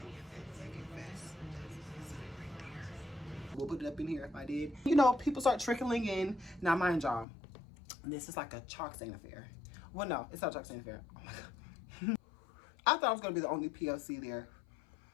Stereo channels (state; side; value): drops out; right; at 7.2 s